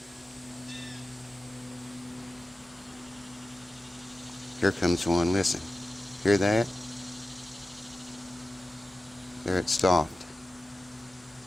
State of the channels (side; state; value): both; normal; correlation 0.94